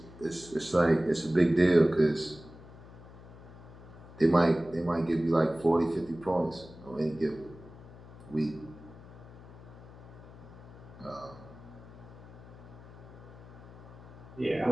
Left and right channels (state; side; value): noise; left; hum, 18 dB below the sound